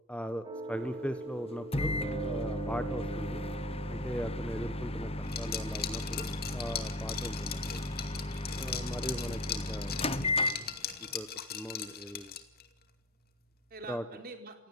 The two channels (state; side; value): normal; both; correlation 0.41